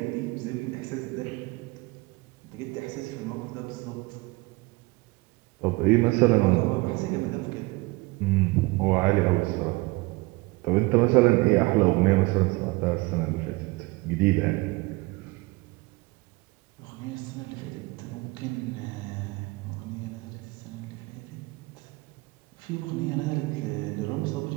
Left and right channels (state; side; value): quieter; left; 23.7 dB